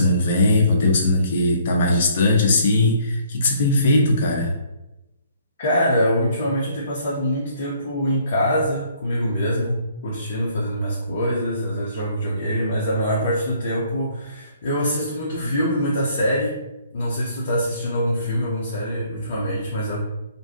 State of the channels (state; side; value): inverted; both; correlation -0.62